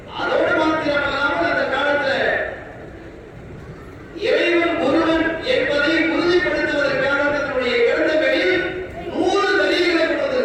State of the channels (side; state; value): both; identical; correlation 1.00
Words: அதோடு மாத்திரமல்லாமல் அந்த காலத்துல இறைவன் ஒருவன் என்பதை உறுதிப்படுத்துவதற்காக தன்னுடைய கிரந்தங்களில் 100 தலீல்களை கொண்டு